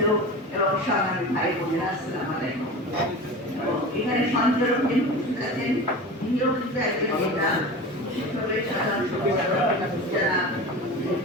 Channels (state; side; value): normal; both; correlation 0.32